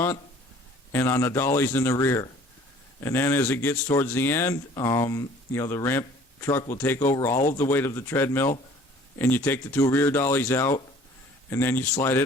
and on the dollies in the rear. And then as it gets towards the end, the ramp truck will take over all of the weight of the treadmill, and you take the two rear dollies out, and then you slide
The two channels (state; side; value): normal; both; correlation 0.52